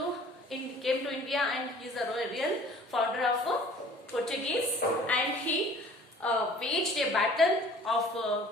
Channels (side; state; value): both; normal; correlation 0.50